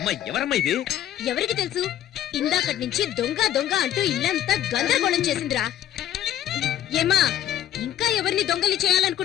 ఎవరమ్మా ఇది? ఎవరికి తెలుసు? ఇందాకటి నుంచి దొంగ దొంగ అంటూ ఇల్లంతా గందరగోళం చేసిందిరా. ఏమా ఇంకా ఎవరిని దొంగలి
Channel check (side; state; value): right; quieter; 11.5 dB